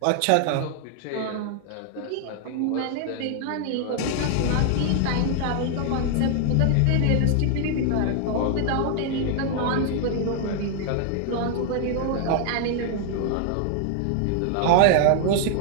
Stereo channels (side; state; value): both; different; correlation 0.00